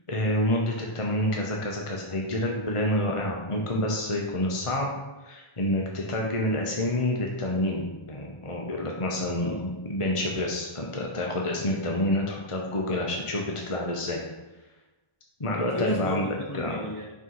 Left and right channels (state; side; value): late; right; 1.4 ms